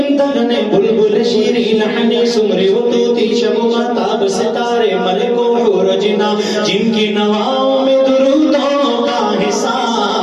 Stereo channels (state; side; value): identical; both; correlation 1.00